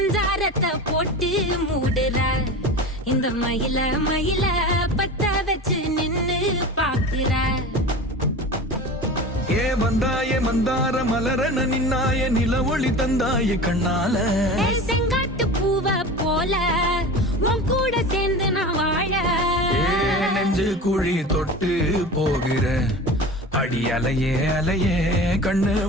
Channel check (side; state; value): both; normal; correlation 0.33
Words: போட்டு மூடுற இந்த மயில மயில பத்த வச்சு நின்னு பாக்குற. ஏ வந்தாய மந்தார மலரன நின்னாய நில ஒளி தந்தாய கண்ணால. செங்காட்டு பூவ போல உன் கூட சேர்ந்து நான் வாழ. நெஞ்சு குழி தொட்டு போகிற அடி அலையே அலையே கண்ணு